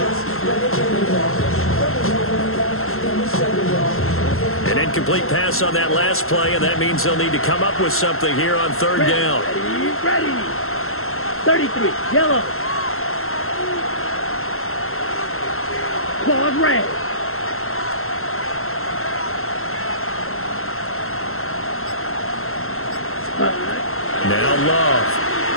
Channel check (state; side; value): late; right; 0.62 ms